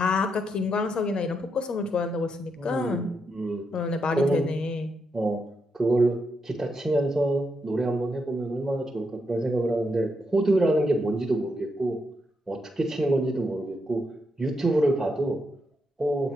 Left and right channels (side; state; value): both; normal; correlation 0.82